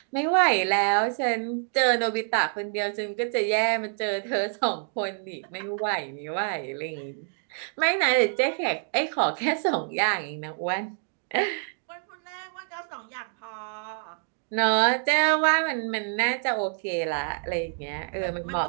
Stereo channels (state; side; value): silent; left; digital silence